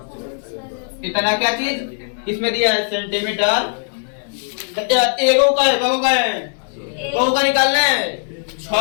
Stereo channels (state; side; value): silent; right; digital silence